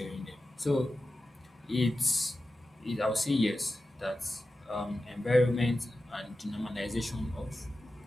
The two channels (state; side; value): normal; both; correlation 0.93